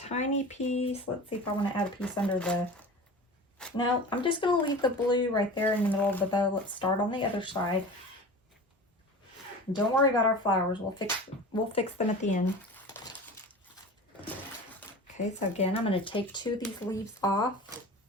piece. Let's see if I want to add a piece under the... No, I'm just going to leave the blue right there in the middle of the bow. Let's start on the other side. Don't worry about our flowers. We'll fix them at the end. Okay, so again, I'm going to take 2 of these leaves off.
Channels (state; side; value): normal; both; correlation 0.35